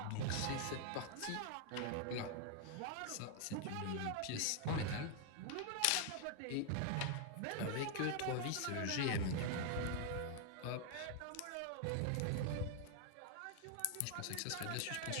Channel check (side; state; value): both; different; correlation 0.00